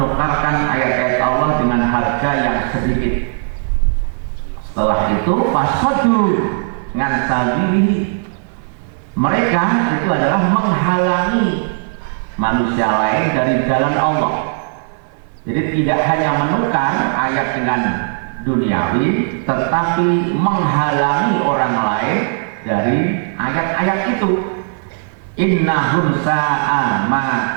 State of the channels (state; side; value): silent; left; 56 dB below the other